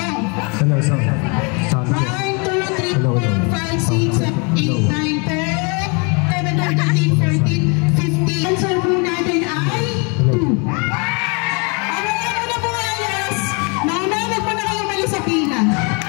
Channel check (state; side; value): quieter; right; 33.1 dB